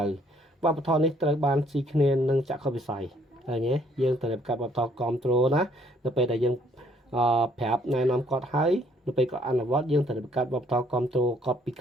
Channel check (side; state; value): both; normal; correlation 0.64